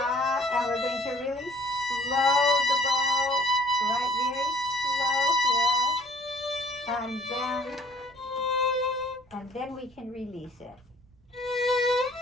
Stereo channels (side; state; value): right; noise; rumble, 30 dB below the sound